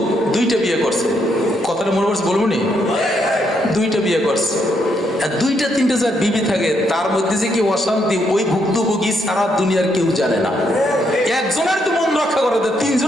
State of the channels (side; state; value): both; normal; correlation 0.76